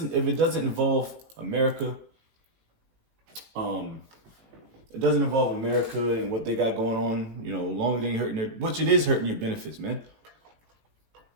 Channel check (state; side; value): late; left; 18 ms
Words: it doesn't involve America, it doesn't involve America and what they got going on, long as they ain't hurting which it is hurting your benefits, man.